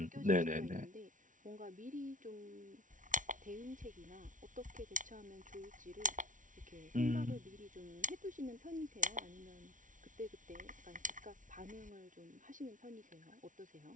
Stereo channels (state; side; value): late; left; 0.38 ms